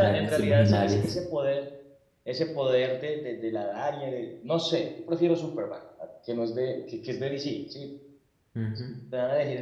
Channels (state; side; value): identical; both; correlation 1.00